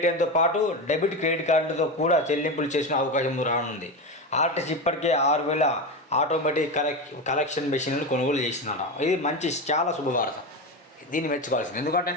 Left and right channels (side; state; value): both; normal; correlation 0.19